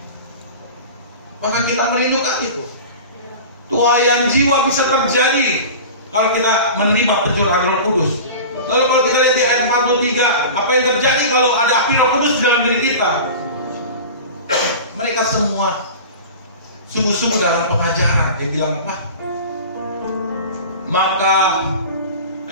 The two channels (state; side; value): inverted; both; correlation -0.34